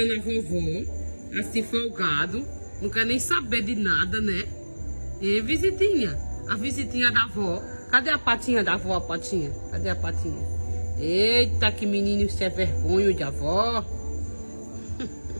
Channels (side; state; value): both; inverted; correlation -1.00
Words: a vovó, assim, folgado. Não quer nem saber de nada, né? E visitinha. A visitinha da avó. Cadê a patinha da avó, a patinha? Cadê a patinha? Eita, que menino, isso é vergonha de avó.